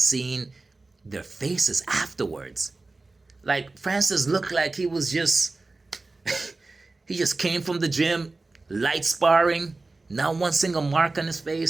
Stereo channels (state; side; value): quieter; left; 3.4 dB